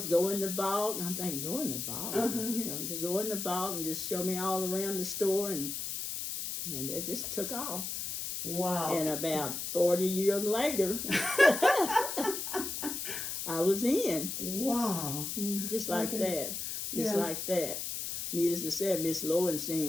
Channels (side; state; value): left; noise; hiss, 4 dB below the sound